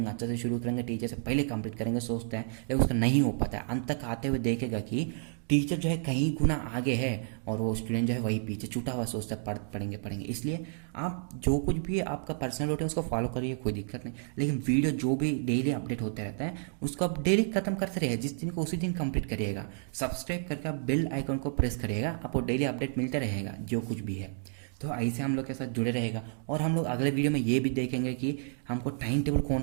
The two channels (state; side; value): silent; left; digital silence